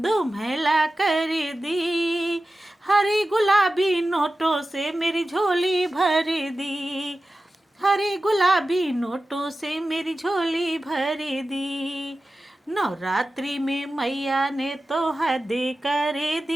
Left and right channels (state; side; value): normal; both; correlation 0.94